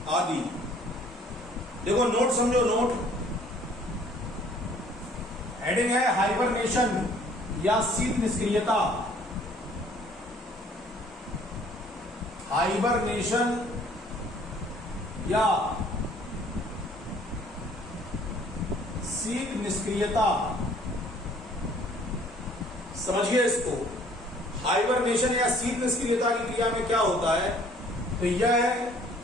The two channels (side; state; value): both; normal; correlation 0.57